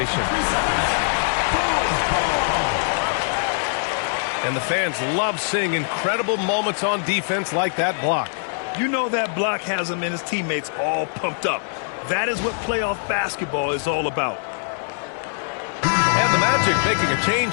And the fans love seeing incredible moments on defense like that block. You know that block has him and his teammates all pumped up. That is what playoff basketball is all about. And the Magic making a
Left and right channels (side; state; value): right; silent; digital silence